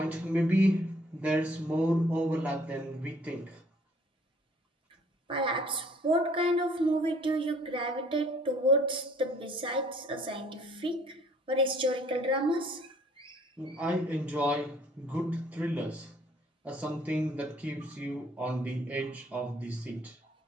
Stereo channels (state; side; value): normal; both; correlation 0.58